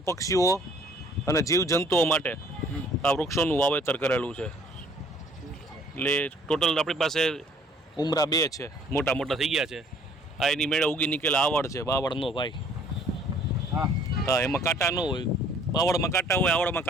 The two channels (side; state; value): both; normal; correlation 0.58